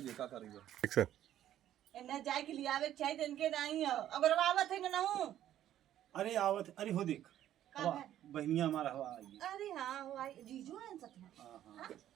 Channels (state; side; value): quieter; left; 11.9 dB